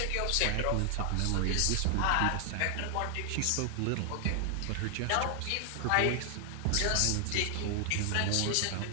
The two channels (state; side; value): different; both; correlation 0.00